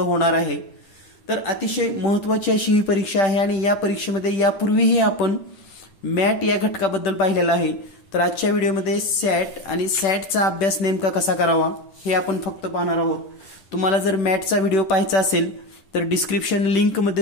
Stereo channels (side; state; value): right; late; 10 ms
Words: होणार आहे। तर अतिशय महत्त्वाची अशी ही परीक्षा आहे आणि या परीक्षेमध्ये यापूर्वीही आपण मॅट या घटकाबद्दल पाहिलेलं आहे. तर आजच्या व्हिडिओमध्ये सॅट आणि सॅटचा अभ्यास नेमका कसा करावा हे आपण फक्त पाहणार आहोत. तुम्हाला जर मॅटचा व्हिडिओ पाहायचा असेल तर डिस्क्रिप्शन